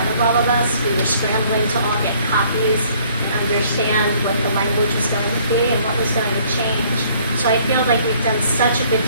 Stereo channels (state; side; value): inverted; both; correlation -0.60